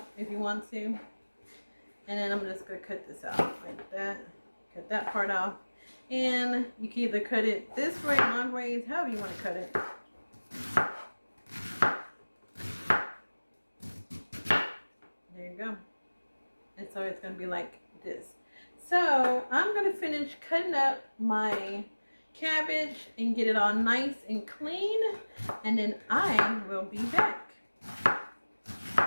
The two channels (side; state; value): both; inverted; correlation -1.00